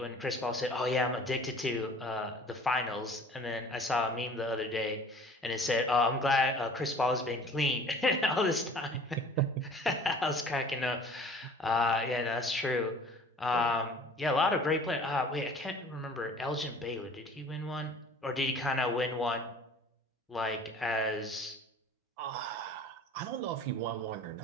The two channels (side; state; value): both; normal; correlation 0.48